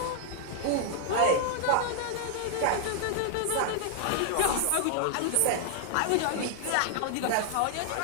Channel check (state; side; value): different; both; correlation 0.00